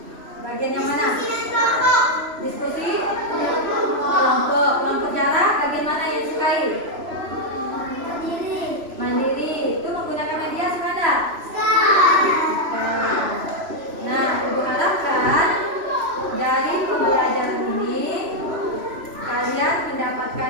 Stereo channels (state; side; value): late; left; 3.0 ms